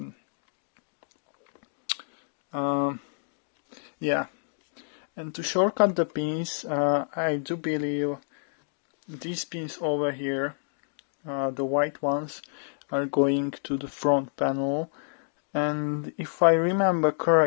Yeah, and to shortcut the pins, I do believe these pins over here, the white ones, are going to the front panel, and if I remember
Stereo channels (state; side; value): silent; right; digital silence